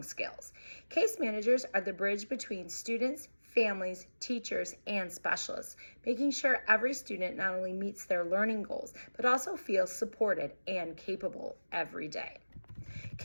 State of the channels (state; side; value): inverted; both; correlation -1.00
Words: skills. Case managers are the bridge between students, families, teachers, and specialists, making sure every student not only meets their learning goals, but also feels supported and capable every day.